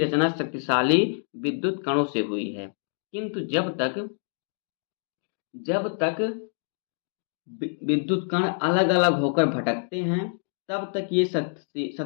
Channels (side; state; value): right; silent; 60 dB below the other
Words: शक्तिशाली विद्युत कणों से हुई है, किंतु जब तक विद्युत कण अलग अलग होकर भटकते हैं तब तक ये